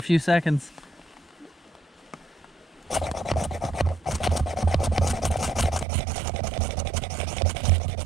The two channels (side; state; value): left; drops out; at 5.9 s